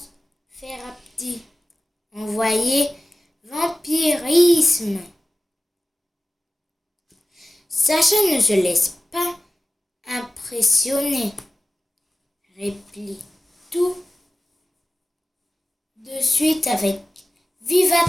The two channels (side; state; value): both; normal; correlation 0.96